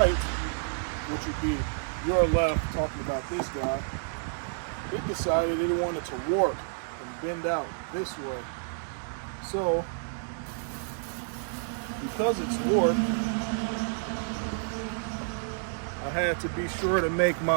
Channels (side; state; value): left; silent; 58 dB below the other